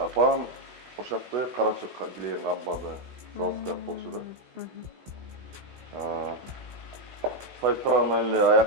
ошакты карачок килеген камбаны заводко болчу да. Союз тарабынан эле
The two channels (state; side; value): late; left; 16 ms